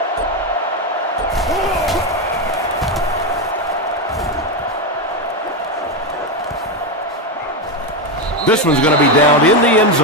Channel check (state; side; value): normal; both; correlation 0.10